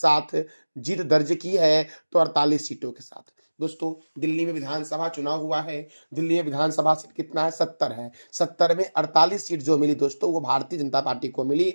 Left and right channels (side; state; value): both; inverted; correlation -1.00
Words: जीत दर्ज की है? तो 48 सीटों के साथ। दोस्तों दिल्ली में विधानसभा चुनाव हुआ है। दिल्ली में विधानसभा सीट कितना है? 70 है। 70 में 48 सीट जो मिली दोस्तों वो भारतीय जनता पार्टी को मिली,